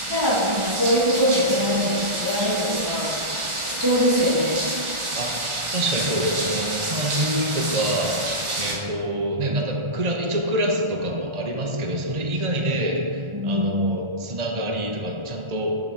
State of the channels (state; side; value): late; left; 1.4 ms